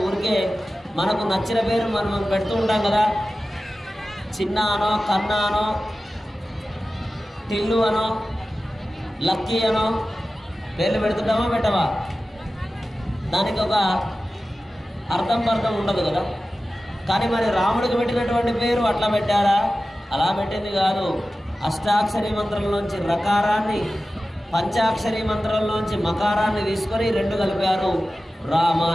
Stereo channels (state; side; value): normal; both; correlation 0.95